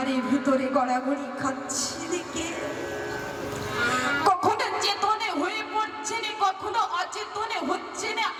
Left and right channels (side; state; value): both; identical; correlation 1.00